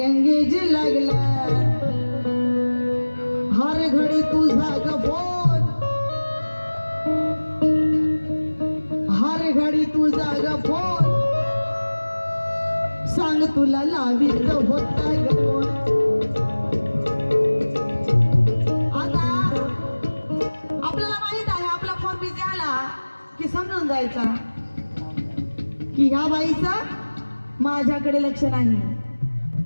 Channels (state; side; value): inverted; both; correlation -1.00